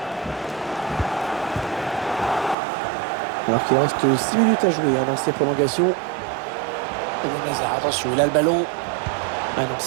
Alors qu'il reste 6 minutes à jouer hein, dans ces prolongations. Attention, il a le ballon. Ah non,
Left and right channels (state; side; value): drops out; left; at 2.6 s